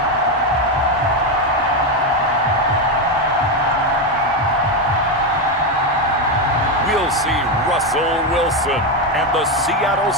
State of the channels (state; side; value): normal; both; correlation 0.10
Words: We'll see Russell Wilson and the Seattle